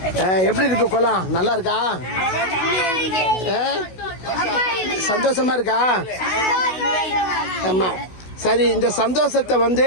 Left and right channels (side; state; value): right; late; 16 ms